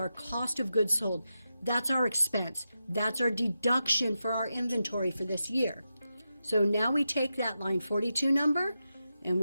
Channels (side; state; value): both; inverted; correlation -0.89